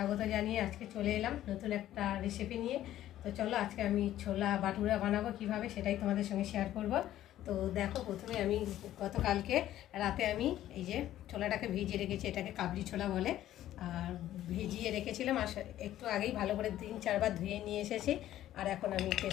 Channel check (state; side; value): quieter; right; 13.0 dB